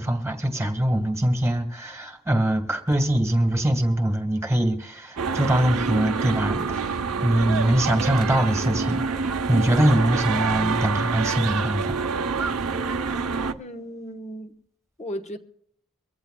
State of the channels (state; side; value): normal; both; correlation 0.79